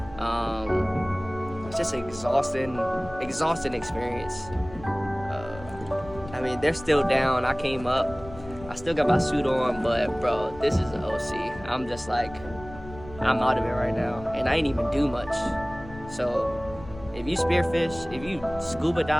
It's just an exhausting experience. I mean, they're still down. I came up, I still got my suit on, but bro, this is an OC. I'm just like, I'm out of it right now, and I ain't even do much. So if you spearfish, if you scuba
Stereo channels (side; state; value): left; noise; rumble, 16 dB below the sound